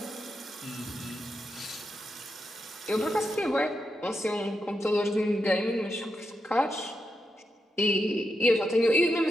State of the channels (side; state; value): both; normal; correlation 0.86